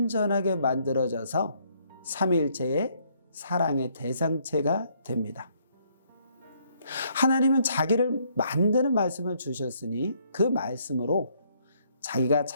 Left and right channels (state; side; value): inverted; both; correlation -0.69